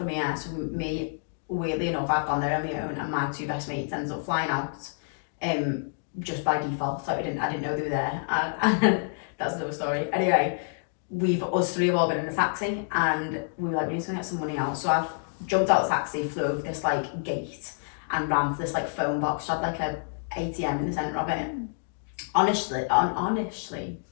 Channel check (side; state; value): right; silent; digital silence